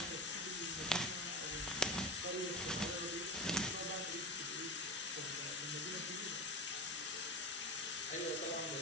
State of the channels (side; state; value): both; normal; correlation 0.27